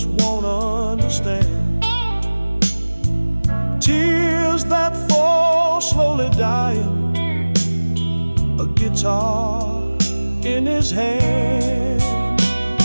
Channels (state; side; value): inverted; both; correlation -1.00